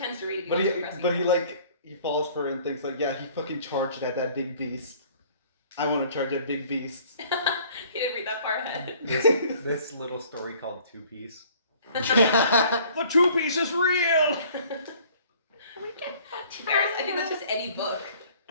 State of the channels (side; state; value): both; inverted; correlation -0.54